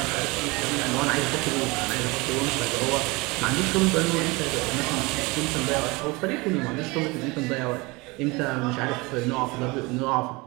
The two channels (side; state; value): left; quieter; 24.8 dB